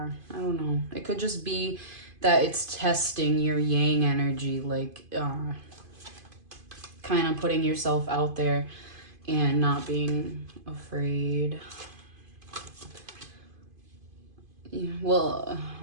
I don't know. It could just be that it's testing your Yang energy, like kind of putting yourself out there and not being afraid. Yeah, well,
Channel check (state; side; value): late; left; 2.5 ms